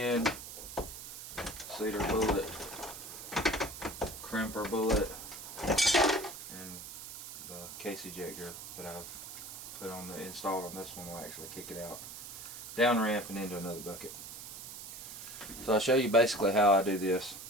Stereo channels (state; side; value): noise; right; hiss, 11 dB below the sound